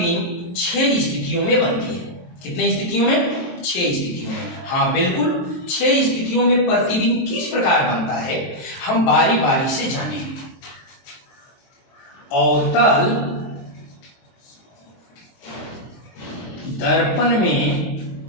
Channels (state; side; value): late; right; 23 ms